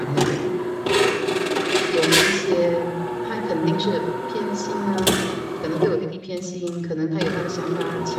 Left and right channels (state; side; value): identical; both; correlation 1.00